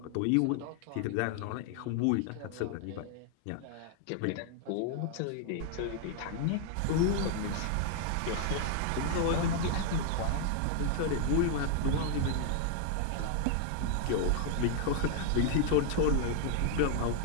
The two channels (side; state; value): both; different; correlation 0.00